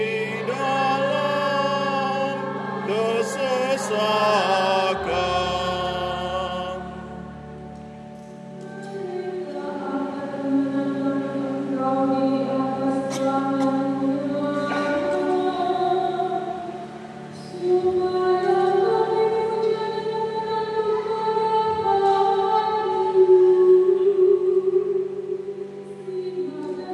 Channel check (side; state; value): both; identical; correlation 1.00